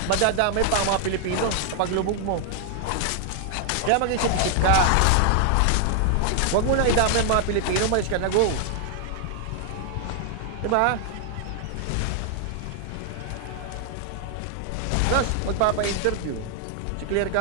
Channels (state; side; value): different; both; correlation 0.00